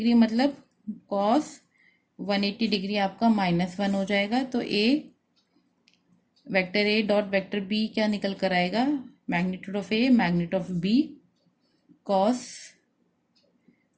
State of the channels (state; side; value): identical; both; correlation 1.00